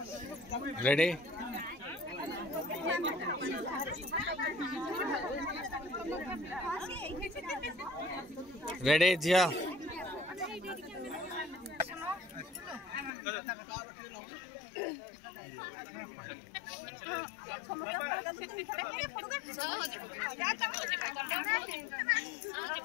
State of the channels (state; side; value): drops out; right; at 13.1 s